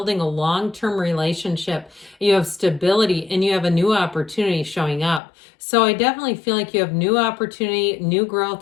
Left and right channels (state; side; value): drops out; right; at 5.2 s